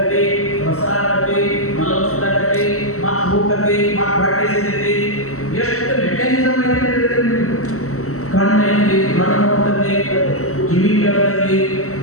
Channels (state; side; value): late; right; 0.64 ms